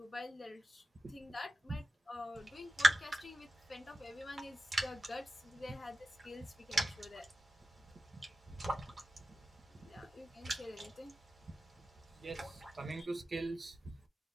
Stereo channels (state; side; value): normal; both; correlation 0.94